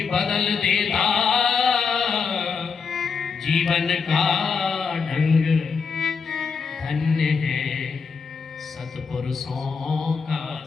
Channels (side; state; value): right; quieter; 5.4 dB